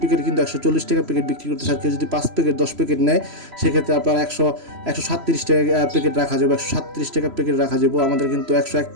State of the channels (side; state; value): left; late; 3.0 ms